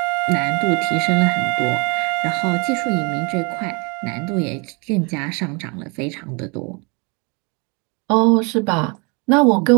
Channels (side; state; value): left; quieter; 31.4 dB